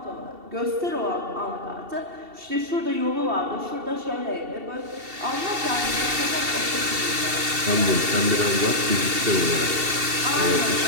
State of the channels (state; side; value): late; left; 2.7 ms